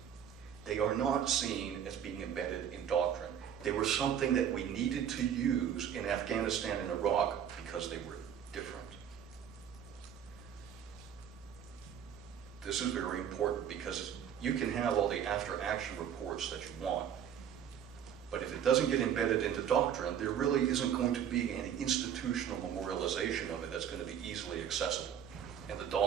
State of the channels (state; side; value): quieter; left; 9.0 dB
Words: They are not seen as being embedded in doctrine. They were something that we needed to use in Afghanistan and Iraq because they were different. This is very important because you can have all the after-action reports that you want, but if it doesn't get embedded into doctrine, there really isn't going to be any institutional memorialization of it that's going to be easily accessible, and the